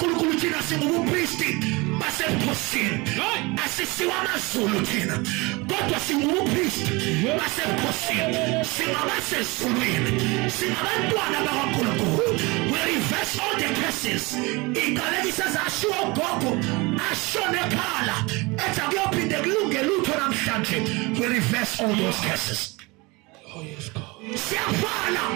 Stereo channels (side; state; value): left; quieter; 25.0 dB